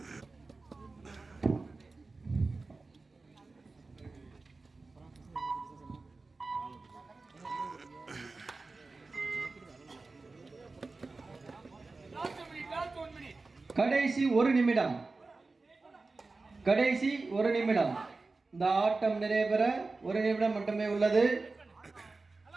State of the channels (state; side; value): quieter; left; 3.7 dB